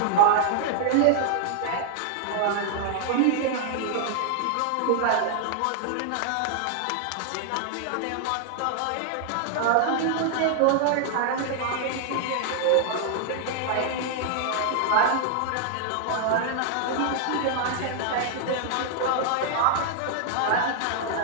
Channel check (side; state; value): both; different; correlation -0.01